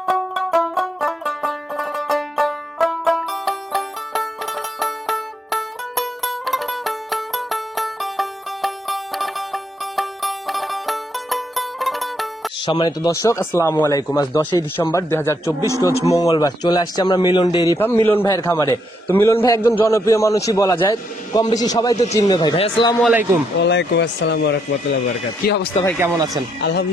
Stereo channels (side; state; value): both; normal; correlation 0.76